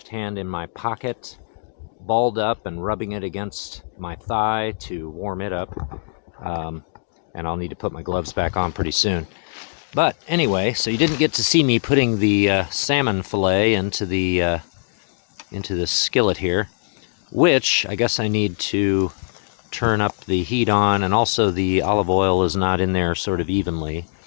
hand in my pocket, balled up and rubbing it against my thigh to warm it up, and I'll need to put my gloves back on pretty soon. But anyway, so you didn't get to see me putting the salmon fillet into the skillet here, which I guess I need to turn up the heat on, and also the olive oil is not in there sort of evenly.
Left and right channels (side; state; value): right; silent; digital silence